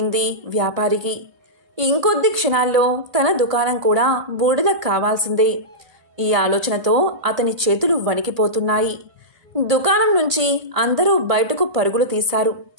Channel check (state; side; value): late; left; 2.0 ms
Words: వ్యాపారికి. ఇంకొద్ది క్షణాల్లో తన దుకాణం కూడా బూడిద కావాల్సిందే. ఈ ఆలోచనతో అతని చేతులు వణికిపోతున్నాయి. దుకాణం నుంచి అందరూ బయటకు పరుగులు తీశారు.